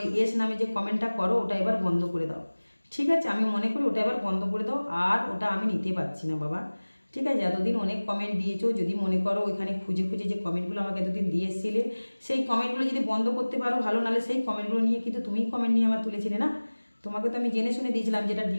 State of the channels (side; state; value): both; inverted; correlation -1.00